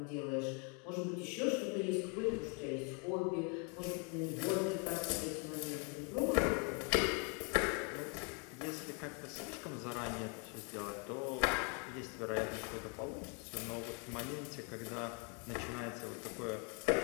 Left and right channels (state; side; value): quieter; right; 36.1 dB